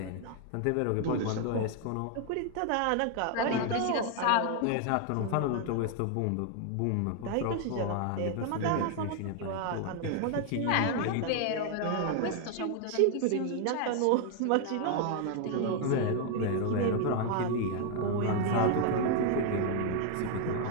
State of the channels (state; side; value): different; both; correlation 0.00